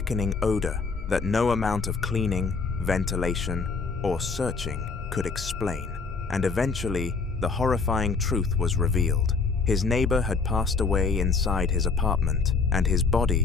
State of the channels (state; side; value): quieter; right; 4.6 dB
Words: odor that no amount of cleaning, ventilation, or searching could explain. And eventually, the horrifying truth was revealed. His neighbor had passed away inside his apartment, and his